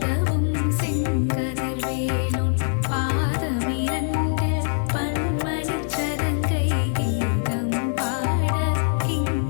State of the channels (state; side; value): silent; right; 62 dB below the other